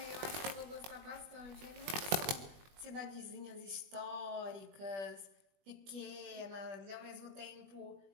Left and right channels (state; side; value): late; left; 20 ms